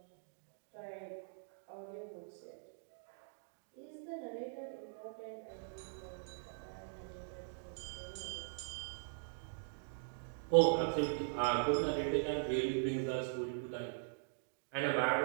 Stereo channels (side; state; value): left; silent; digital silence